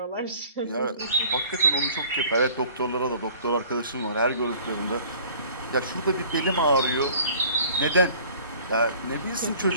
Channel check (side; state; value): both; inverted; correlation -0.51